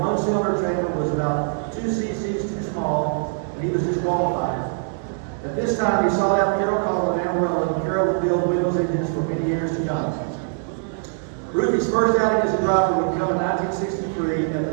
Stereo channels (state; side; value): silent; left; digital silence